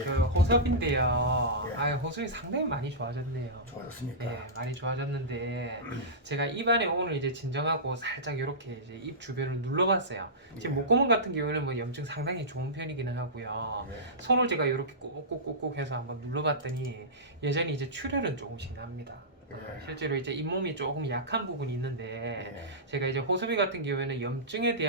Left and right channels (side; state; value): both; normal; correlation -0.17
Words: 그 호섭인데요. 예. 호섭이 상당히 많이 좋아졌네요. 좋아졌습니까? 예, 많이 좋아졌는데 제가 입안에 오늘 이제 진정하고 살짝 이렇게 이제 입 주변을 눌러봤어요. 지금 예. 목구멍 같은 경우에는 뭐 염증 상당히 좋은 편이기는 하고요. 예. 손을 제가 이렇게 꾹꾹꾹꾹 해서 한번 눌러봤더니 여전히 이제 출혈은 조금씩 납니다. 예. 실제로 이제 잇몸이 조금 약한 부분이 있는데 예. 제가 이제 호섭이 같은 경우에는 염증에